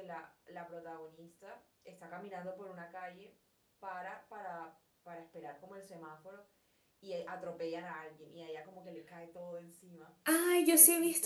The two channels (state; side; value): identical; both; correlation 1.00